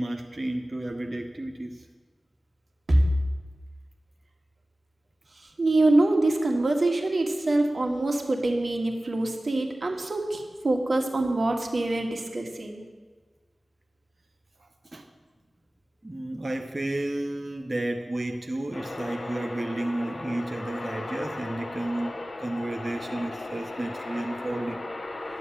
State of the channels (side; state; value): both; normal; correlation 0.97